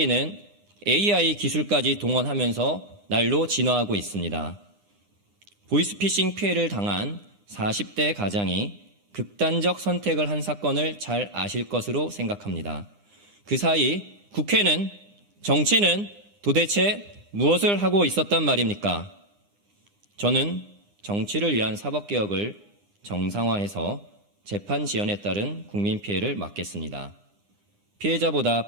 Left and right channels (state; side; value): late; left; 9.8 ms